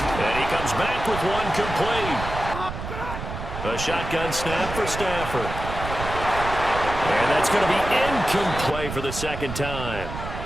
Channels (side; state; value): right; noise; rumble, 7 dB below the sound